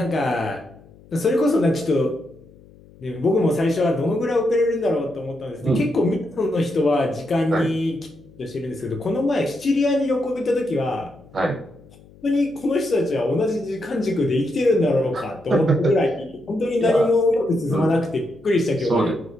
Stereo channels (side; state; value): left; noise; hum, 25 dB below the sound